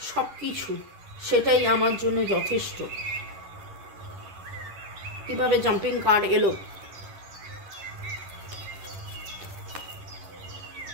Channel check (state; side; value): late; left; 10 ms